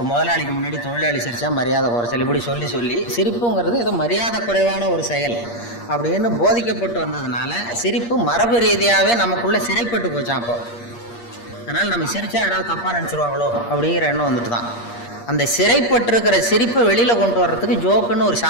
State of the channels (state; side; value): late; right; 8.5 ms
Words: முதலாளிக்கு முன்னாடி தொழிலாளி சிரித்தா மரியாதை குறைச்சல், இப்படி சொல்லி சொல்லி சிரிப்புங்கிறது ஏதோ மரியாதை குறைவான ஒரு செயல் அப்படின்னு போதிக்கப்பட்டு வந்ததுனால சிரிப்பு மரபு ரீதியாகவே நமக்குள்ளே சிறைப்பட்டு போச்சான். அப்போ அதனால் நம்ம சிரித்தா யாராவது தப்பாக நினச்சிருவாங்களோ அப்படிங்கிற எண்ணம் வந்துட்டு தான். அந்த சிறைப்பட்டிருக்கிற சிரிப்பை வெளியில் கொண்டு வர்றதுக்கு ஜோக்குன்னு ஒரு